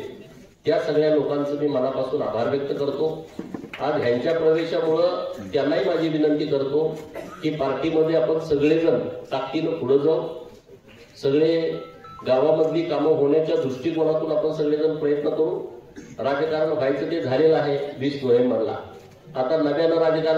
त्या सगळ्या लोकांचं मी मनापासून आभार व्यक्त करतो. आज ह्यांच्या प्रवेशामुळं त्यांनाही माझी विनंती करतो की पार्टीमध्ये आपण सगळेजण ताकदीनं पुढे जाऊ. सगळे गावामधली कामं होण्याच्या दृष्टिकोनातून आपण सगळेजण प्रयत्न करू. राजकारण व्हायचं ते झालेलं आहे 20 नोव्हेंबरला. आता नव्यानं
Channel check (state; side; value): identical; both; correlation 1.00